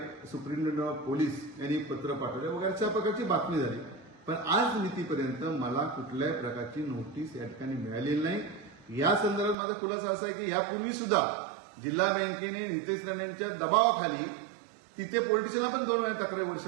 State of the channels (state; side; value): drops out; left; at 9.6 s